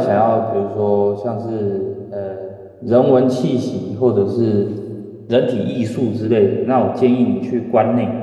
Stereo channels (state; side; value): identical; both; correlation 1.00